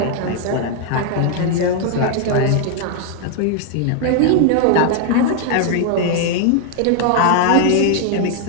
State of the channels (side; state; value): both; different; correlation 0.00